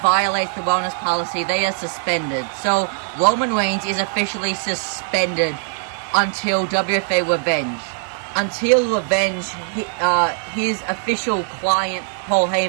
the wellness policy, they are suspended. So, Roman Reigns is officially suspended until WFA Revenge. Until Revenge, his official client, Paul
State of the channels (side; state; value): left; silent; 64 dB below the other